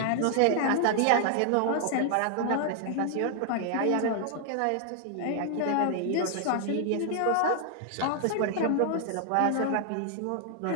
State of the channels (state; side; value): different; both; correlation 0.00